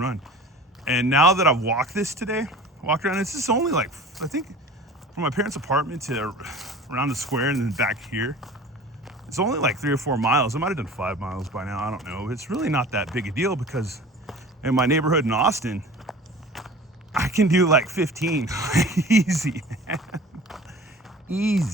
And now that I've walked around, it's just only like, I think from my parents' apartment to around the square and then back here, it's only like 3 or 4 miles. I might have done 5 miles by now, I don't know. It's really not that big a deal because in my neighborhood in Austin, I can do like 15, easy, man.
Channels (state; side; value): normal; both; correlation 0.41